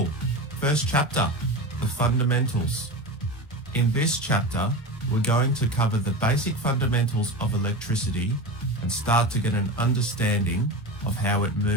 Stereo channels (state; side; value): normal; both; correlation 0.25